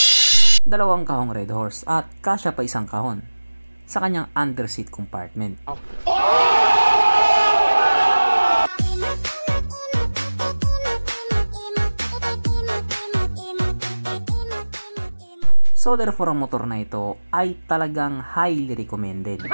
2 kahong Red Horse at kasya pa 1 kahon sa kanyang underseat compartment. So therefore, ang motor na ito ay talagang highly recommended.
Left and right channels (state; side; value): inverted; both; correlation -1.00